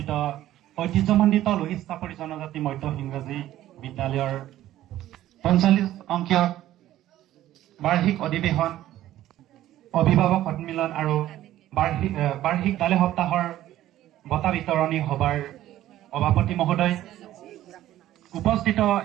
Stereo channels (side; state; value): left; quieter; 13.7 dB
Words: ঐতিহ্যমণ্ডিত লোহিত চাপৰি জনজাতি মধ্য ইংৰাজী বিদ্যালয়ৰ ৪৫ অংকীয় বাৰ্ষিক অধিৱেশন, অভিভাৱক সন্মিলন আৰু বাৰ্ষিক বিদ্যালয় সপ্তাহৰ বঁটা বিতৰণী সভাৰ সভাপতি মহোদয়, উপস্থিত